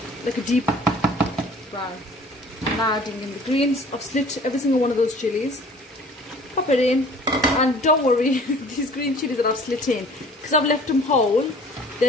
like a deep brown. I'm now adding in the greens. I've slit every single one of those chilies. Pop it in, and don't worry, these green chilies that I've slit in, because I've left them whole,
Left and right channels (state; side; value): normal; both; correlation 0.49